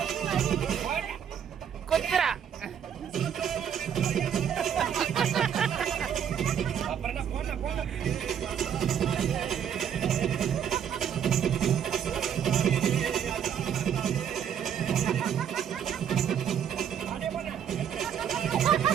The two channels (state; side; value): quieter; left; 8.5 dB